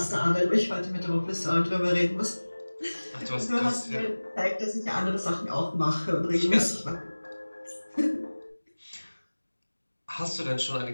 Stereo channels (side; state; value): both; inverted; correlation -1.00